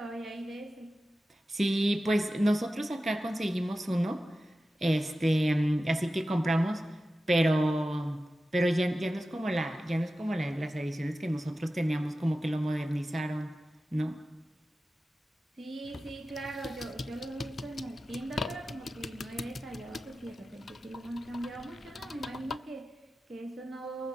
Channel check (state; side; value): normal; both; correlation 0.94